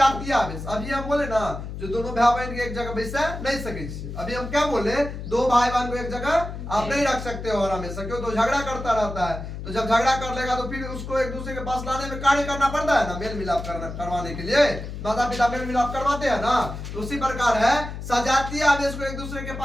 आवेश। अभी हम बोले ना, जो दोनों भाई बहन के एक जगह बैसे नहीं सके। अभी हम क्या बोले? दो भाई बहन को एक जगह आप नहीं रख सकते हो और हमेशा, क्यों? तो झगड़ा करता रहता है। तो जब झगड़ा कर लेगा तो फिर उसको एक दूसरे के पास लाने में कार्य करना पड़ता है ना, मेल मिलाप करवाने के लिए माता पिता मेल मिलाप करवाते हैं ना। तो उसी प्रकार है, सजातीय आवेश को एक दूसरे के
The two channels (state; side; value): noise; left; hum, 8 dB below the sound